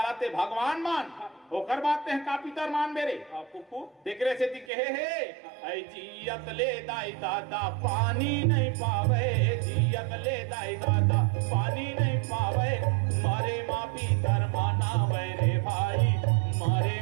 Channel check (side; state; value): left; drops out; at 4.7 s